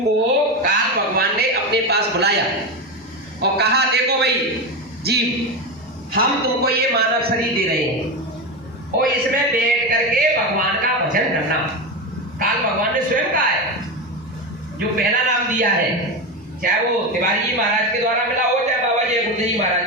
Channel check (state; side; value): normal; both; correlation 0.17